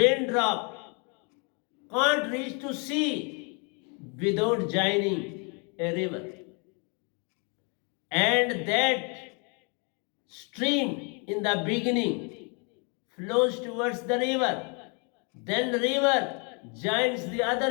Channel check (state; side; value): quieter; right; 35.1 dB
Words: can't reach to sea without joining a river. And that stream in the beginning flows towards the river. Then the river joins the